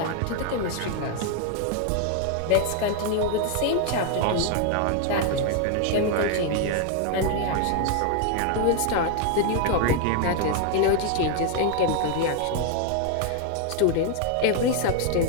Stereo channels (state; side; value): different; both; correlation 0.01